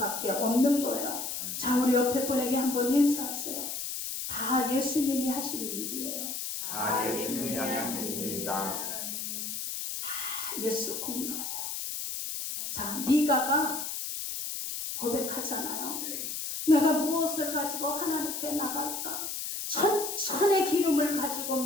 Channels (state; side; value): noise; left; hiss, 4 dB below the sound